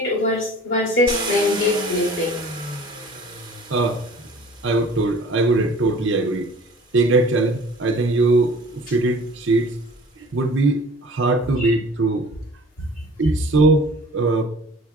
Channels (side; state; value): both; normal; correlation 0.46